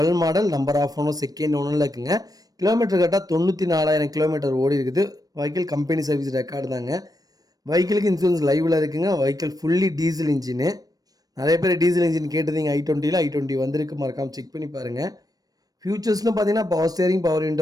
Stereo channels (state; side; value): late; left; 0.18 ms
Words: model, number of owner second ஓனரில் இருக்குங்க. கிலோமீட்டர் கரெக்டாக 94,000 கிலோமீட்டர் ஓடி இருக்குது. வெஹிக்கிள் கம்பெனி சர்வீஸ் ரெக்கார்டு தாங்க. வெஹிக்கிளுக்கு இன்சூரன்ஸ் லைவில் இருக்குங்க. Vehicle fully diesel engine. நிறைய பேர் டீசல் இன்ஜின் கேட்டதிங்க. i20 வந்திருக்கு, மறக்காமல் செக் பண்ணி பாருங்கள். ஃபியூச்சர்ஸ்னு பார்த்தீங்கன்னா பவர் ஸ்டேரிங், பவர்